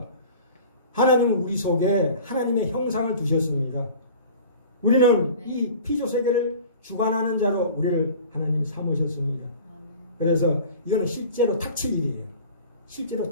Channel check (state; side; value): inverted; both; correlation -0.42